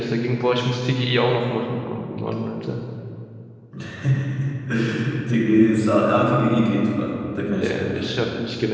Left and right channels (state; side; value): identical; both; correlation 1.00